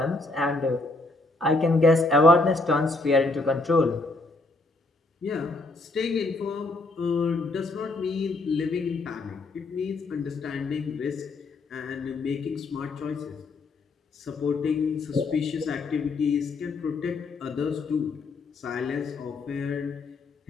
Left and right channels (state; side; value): quieter; right; 3.2 dB